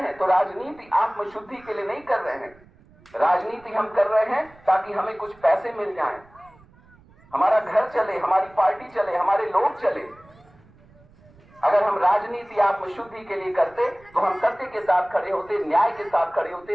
तो राजनीति आत्मशुद्धि के लिए नहीं कर रहे हैं। राजनीति हम कर रहे हैं ताकि हमें कुछ पैसे मिल जाएं, हमारा घर चले, हमारी पार्टी चले, हमारे लोग चले। अगर हम राजनीति आत्मशुद्धि के लिए करते तो हम सत्य के साथ खड़े होते, न्याय के साथ खड़े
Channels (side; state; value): right; noise; rumble, 27 dB below the sound